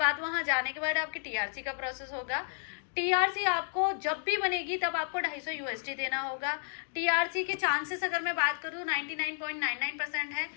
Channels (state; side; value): silent; right; digital silence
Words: वहां जाने के बाद आपकी टीआरसी का प्रोसेस होगा। टीआरसी आपको जब भी बनेगी तब आपको 250 USD देना होगा। टीआरसी के चांसेस अगर मैं बात करूँ 99.99% है।